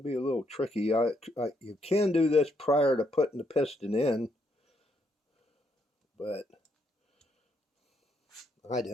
be a little tricky. You can do this prior to putting the piston in, but I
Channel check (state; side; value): normal; both; correlation 0.75